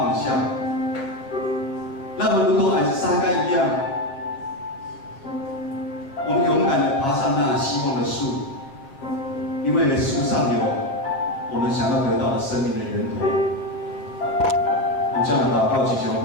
下，让我们如同矮子撒该一样，我们勇敢地爬上那希望的树，因为树上有我们想要得到的生命的源头。我们这样的祷告祈求，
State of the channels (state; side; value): late; right; 7.4 ms